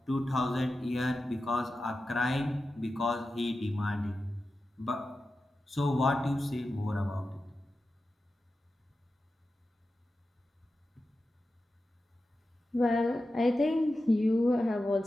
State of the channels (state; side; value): normal; both; correlation 0.92